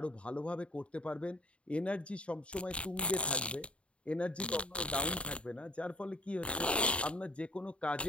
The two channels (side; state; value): right; late; 0.060 ms